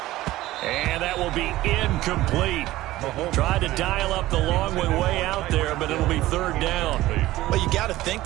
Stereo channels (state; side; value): quieter; left; 16.6 dB